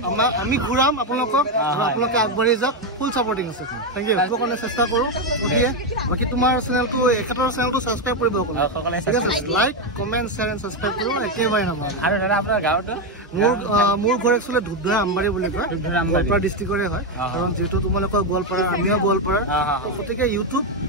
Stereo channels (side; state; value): both; normal; correlation 0.06